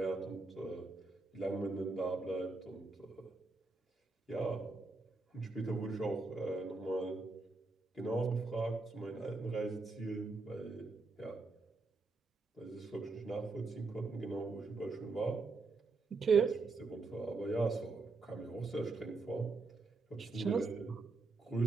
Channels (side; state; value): left; quieter; 3.7 dB